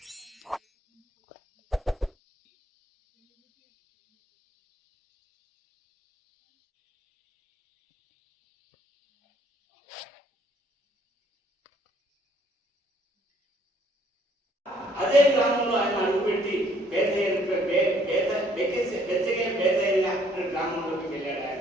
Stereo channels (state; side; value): normal; both; correlation 0.63